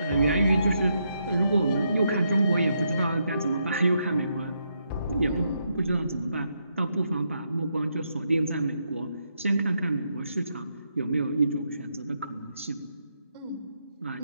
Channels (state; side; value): inverted; both; correlation -0.79